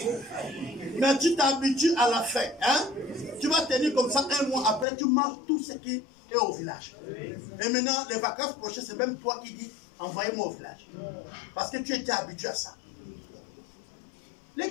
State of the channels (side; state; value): right; drops out; at 4.9 s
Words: Mais tu t'habitues à la faim, hein? Tu vas tenir comme ça un mois après, tu manges tout ce qui est au village. Et maintenant, les vacances prochaines, c'est même toi qui dis, envoyez-moi au village. Parce que tu étais habitué à ça. Les